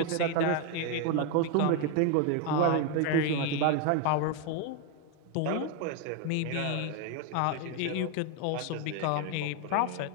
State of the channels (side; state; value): both; different; correlation 0.01